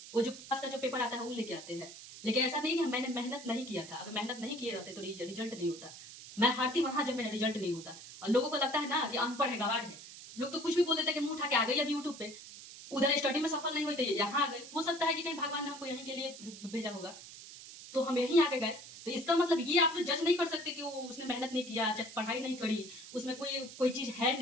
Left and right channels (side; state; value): right; noise; hiss, 14 dB below the sound